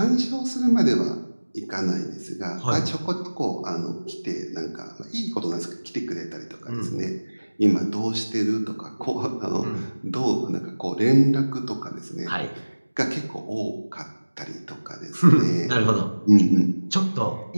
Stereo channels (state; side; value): inverted; both; correlation -1.00